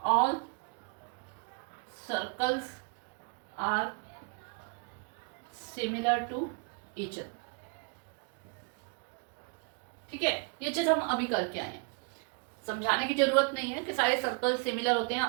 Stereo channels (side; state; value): left; quieter; 35.9 dB